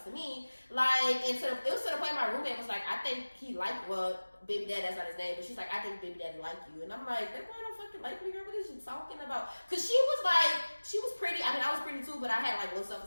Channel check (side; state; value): both; inverted; correlation -1.00